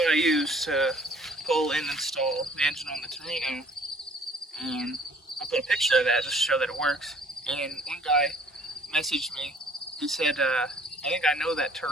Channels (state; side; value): normal; both; correlation 0.56